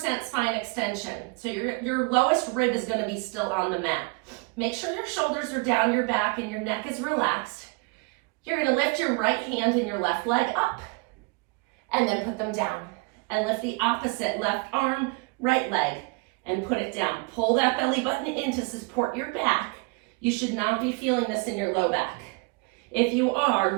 spine extension. So your lowest rib is gonna be still on the mat. Make sure your shoulders are down your back and your neck is relaxed. You're gonna lift your right hand and your left leg up and then put them down. And lift the opposite left arm, right leg, and put it down. Pull that belly button in to support your back. You should not be feeling this in your low back. If you are,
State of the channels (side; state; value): left; quieter; 30.0 dB